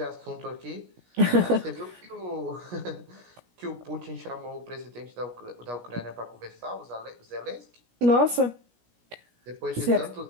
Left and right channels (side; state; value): left; late; 17 ms